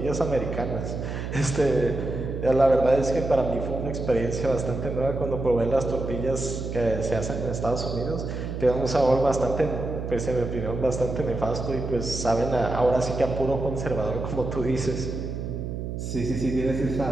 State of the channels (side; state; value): right; noise; hum, 5 dB below the sound